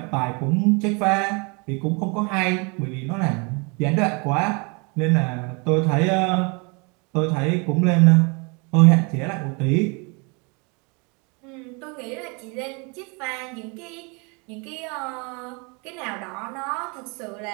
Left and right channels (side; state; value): left; quieter; 31.5 dB